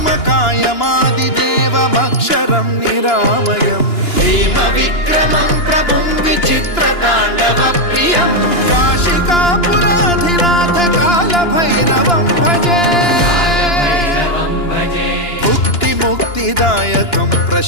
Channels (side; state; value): right; late; 2.9 ms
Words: निरामयं हेमविक्रमं प्रभुं विचित्रताण्डवप्रियं काशिकापुराधिनाथ कालभैरवं भजे मुक्तिदायकं